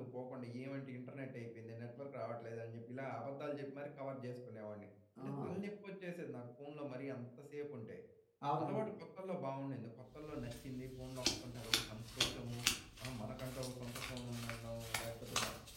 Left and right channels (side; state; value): both; identical; correlation 1.00